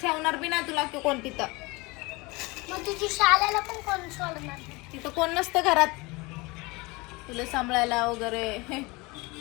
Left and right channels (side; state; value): right; quieter; 24.6 dB